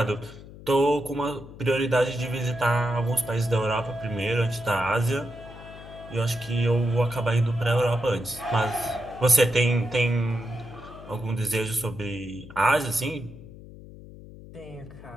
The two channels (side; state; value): left; noise; hum, 17 dB below the sound